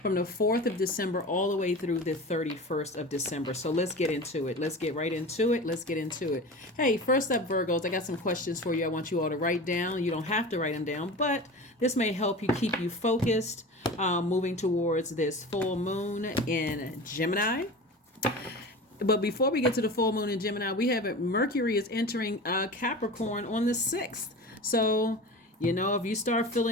From the 4th of December all the way through the 31st of December. So let's get into it. Let's get right into it. Let's get into it. Hey, first up, Virgos, I got some questions for you. I want you all to write down. You don't have to write them down, but this may help you keep you focused moving towards this full moon in Gemini. But before we get to the full moon in Gemini, we have Mercury is entering Capricorn on the 6th. So, if you start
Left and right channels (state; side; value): normal; both; correlation 0.33